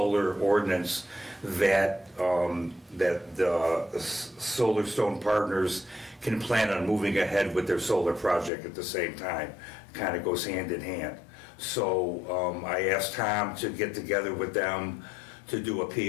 ordinance, that the Solar Stone Partners can plan on moving ahead with their solar project at the same time. Kind of goes hand in hand. So I asked Tom to get together with them to do a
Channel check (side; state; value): right; drops out; at 8.5 s